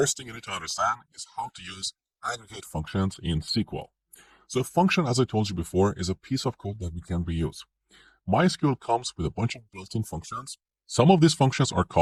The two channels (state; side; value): identical; both; correlation 1.00